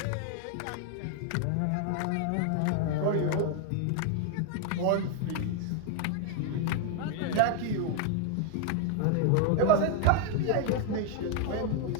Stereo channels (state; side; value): different; both; correlation 0.00